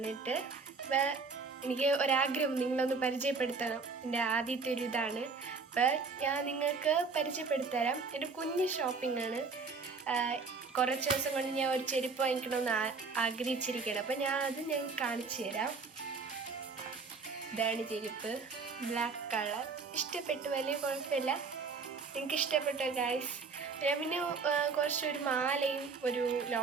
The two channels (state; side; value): quieter; left; 4.6 dB